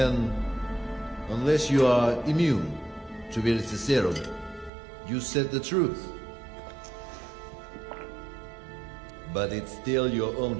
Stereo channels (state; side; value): drops out; left; at 4.7 s